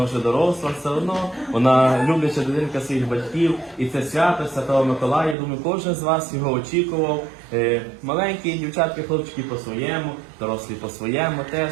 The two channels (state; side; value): drops out; left; at 5.4 s